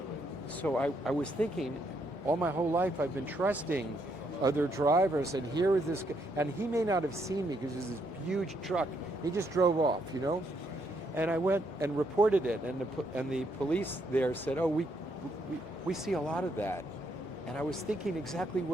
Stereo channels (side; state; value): right; late; 1.4 ms